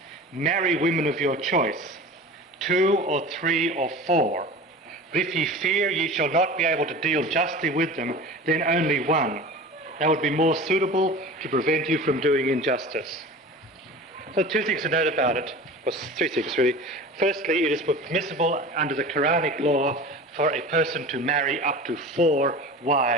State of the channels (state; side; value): normal; both; correlation 0.36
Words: marry women of your choice, 2 or 3 or 4. But if ye fear ye shall not be able to deal justly with them, then only 1. That would be more suitable to prevent you from doing injustice. So 2 things to note about it, or 3 things really. Firstly, it is permissible under the Quranic law for a person to marry up to 4